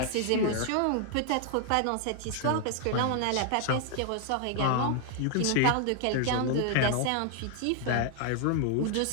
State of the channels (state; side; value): different; both; correlation 0.00